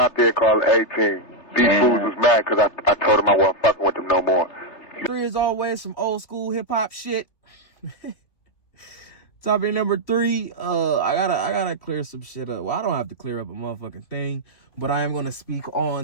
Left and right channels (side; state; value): right; late; 3.3 ms